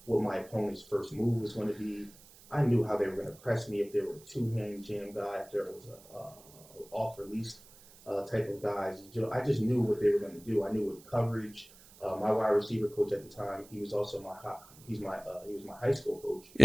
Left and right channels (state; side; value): noise; right; hiss, 23 dB below the sound